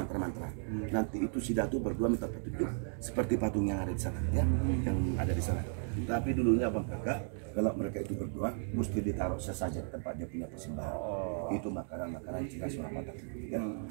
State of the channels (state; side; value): silent; left; 54 dB below the other